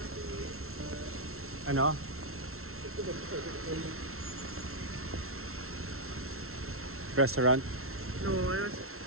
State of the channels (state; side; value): late; left; 0.62 ms